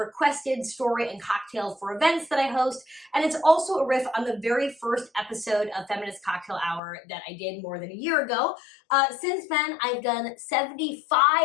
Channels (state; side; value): drops out; right; at 6.8 s